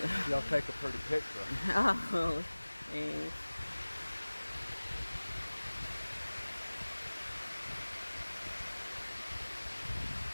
Y'all take a pretty picture. Oh, thanks.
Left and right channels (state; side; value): inverted; both; correlation -1.00